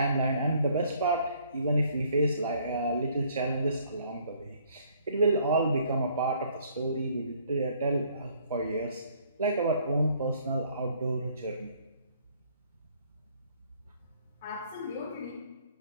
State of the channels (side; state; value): both; inverted; correlation -0.62